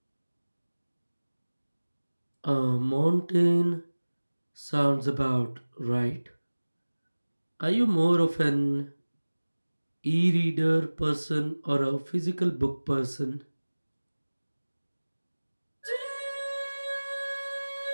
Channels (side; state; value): both; inverted; correlation -1.00